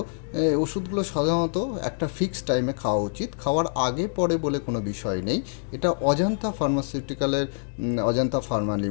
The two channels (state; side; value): silent; right; digital silence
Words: ওষুধগুলো সাধারণত একটা ফিক্সড টাইমে খাওয়া উচিত। খাওয়ার আগে পরে বলে কোনো বিষয় নেই। এটা অজন্তা ফার্মাসিউটিক্যালের, অজন্তা ফার্মা